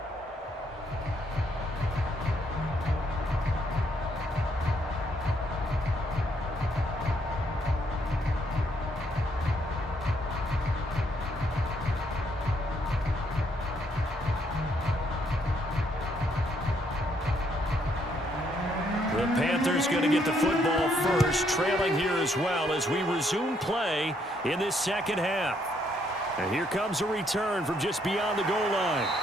The Panthers going to get the football first, trailing here as well as we resume play in this second half. And here comes a return from just beyond the goal line.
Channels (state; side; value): normal; both; correlation 0.71